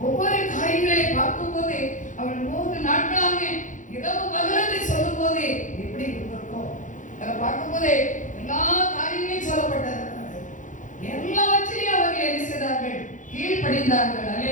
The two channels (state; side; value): late; right; 0.37 ms